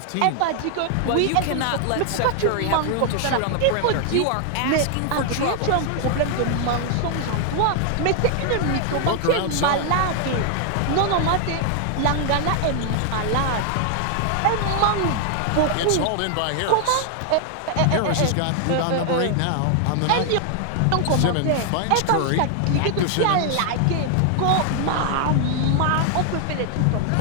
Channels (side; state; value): both; different; correlation 0.00